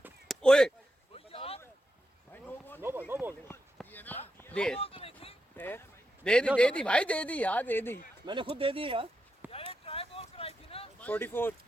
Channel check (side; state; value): both; normal; correlation 0.86